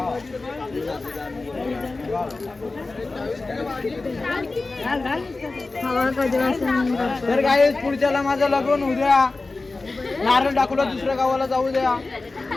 हवा कधी तर गाइस पुढच्याला माझं लग्न उद्या. नारळ टाकूला दुसऱ्या गावाला जाऊ द्या.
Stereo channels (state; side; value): quieter; right; 3.5 dB